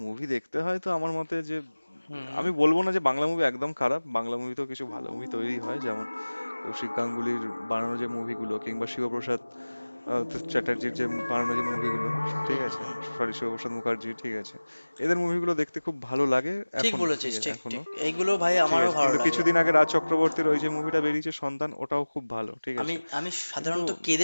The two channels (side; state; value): both; inverted; correlation -1.00